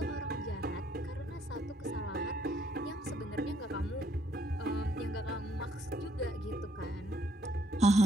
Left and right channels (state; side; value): normal; both; correlation 0.68